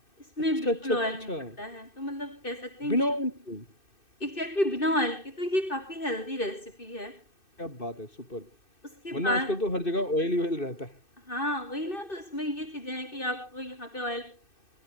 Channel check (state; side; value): late; right; 2.6 ms